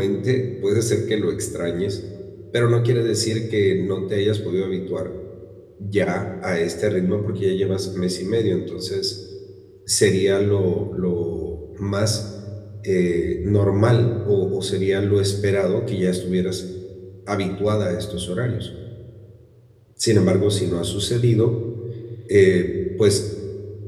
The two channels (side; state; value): both; identical; correlation 1.00